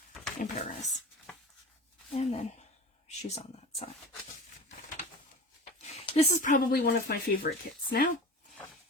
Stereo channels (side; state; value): both; normal; correlation 0.34